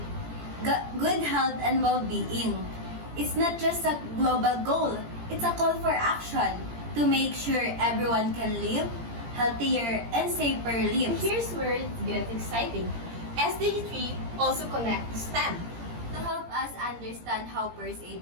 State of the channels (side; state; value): left; late; 17 ms